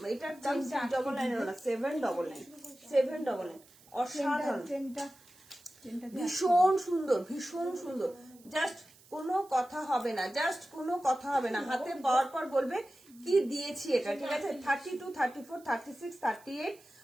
এটার দাম 699 না, 799, 799, অসাধারণ, ভীষণ সুন্দর, ভীষণ সুন্দর। জাস্ট কোনো কথা হবে না, জাস্ট কোনো কথা হবে না, হাতে পাওয়ার পর বলবে কি দিয়েছি এটা, ঠিক আছে? 32 34 36 38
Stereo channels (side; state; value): right; noise; hiss, 26 dB below the sound